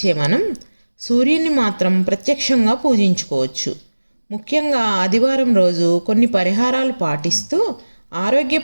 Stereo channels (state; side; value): inverted; both; correlation -1.00